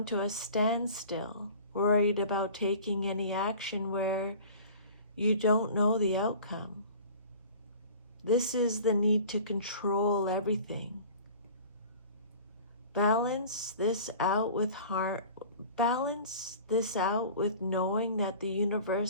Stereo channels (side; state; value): both; inverted; correlation -0.43